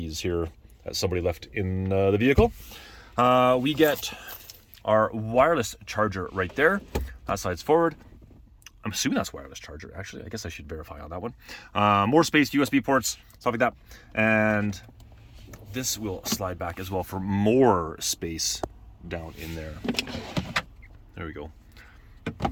here that somebody left in the vehicle. We get our wireless charger right there. That slides forward. I'm assuming that's wireless charger, actually. I guess I should verify on that one. More space, USB ports, stuff like that. And this will slide back as well for more space down in there. There we go.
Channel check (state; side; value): identical; both; correlation 1.00